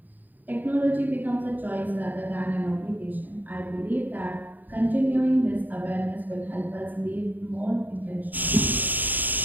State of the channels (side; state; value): left; late; 0.087 ms